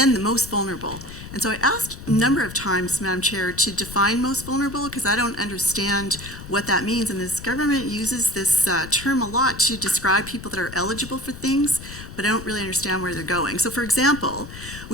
the most vulnerable. And so I asked a number of times, Madam Chair, to define most vulnerable because I don't understand what that means. And this government uses this term a lot to describe people that are eligible for things, but I don't really understand where they're going. So for example,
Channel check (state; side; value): noise; left; rumble, 13 dB below the sound